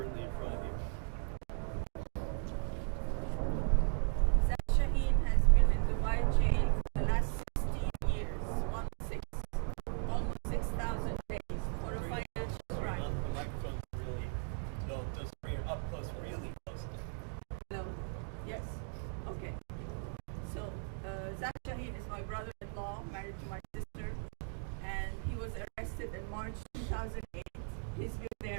in front of you. Zach Shaheen has been in Dubai jail for the last 16 years, almost 6,000 days for a financial crime. The microphone's really, those three are up close, really close. Hello? Yes? Okay. So, Zach Shaheen is my brother-in-law, married to my sister, and he was arrested arrested in March 2008. He's been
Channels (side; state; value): left; silent; 53 dB below the other